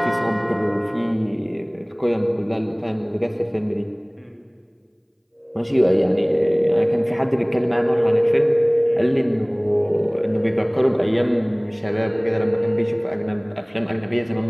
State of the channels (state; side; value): identical; both; correlation 1.00